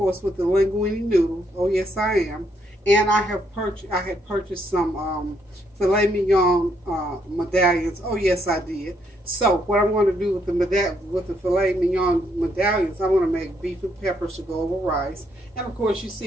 with the linguine noodles. Oh, yes, I am. And I had purchased some Filet Mignon medallions. Oh, yes, I did. So what I'm going to do with the Filet Mignon medallions, I'm going to make beef and peppers to go over rice. And, of course, you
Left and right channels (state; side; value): normal; both; correlation 0.74